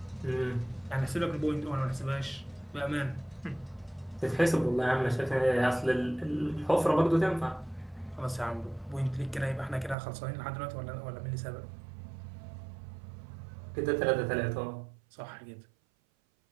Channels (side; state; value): left; drops out; at 10.0 s